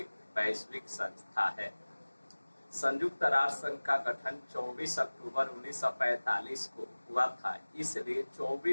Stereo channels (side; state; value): both; inverted; correlation -1.00